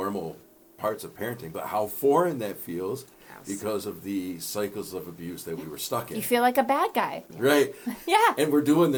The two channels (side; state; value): both; identical; correlation 1.00